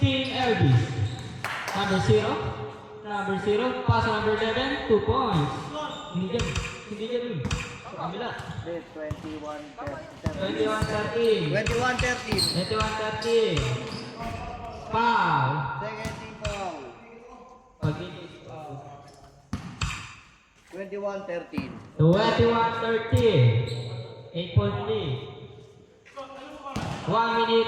Elvis. Number 0. Pass number 11, 2 points. Hindi dyan. Kabila. 21-13. 21-13. Foul. Second team foul. 21-13. 8-point lead. 1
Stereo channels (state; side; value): identical; both; correlation 1.00